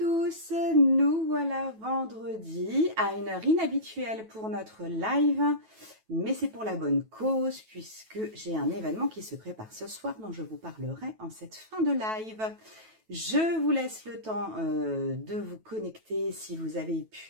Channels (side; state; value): left; late; 9.2 ms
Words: nous voilà vendredi à une heure inhabituelle pour notre live, mais c'est pour la bonne cause puisque j'ai un événement qui se prépare ce soir dont je vous parlerai en cette fin de live. Je vous laisse le temps de vous connecter si vous avez